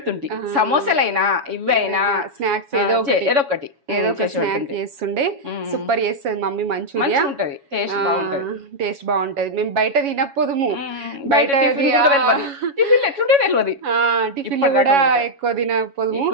సమోసాలైనా ఇవైనా స్నాక్స్ ఏదో ఒకటి స్నాక్ చేస్తుండే. సూపర్ చేస్తుంది మమ్మీ మంచూరియా. ఉంటది, టేస్ట్ బాగుంటది. టేస్ట్ బాగుంటది. మేము బయట తినకపోదుము. బయట టిఫిన్ ఎట్లుంటే తెలియదు. టిఫిన్ కూడా ఎక్కువ తినకపోదుము.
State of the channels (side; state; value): left; late; 7.2 ms